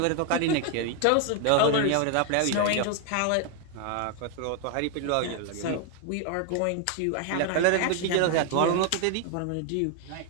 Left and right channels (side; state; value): both; different; correlation 0.01